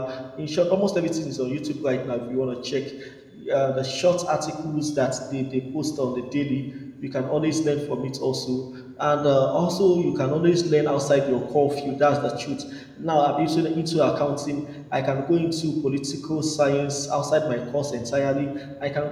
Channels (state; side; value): identical; both; correlation 1.00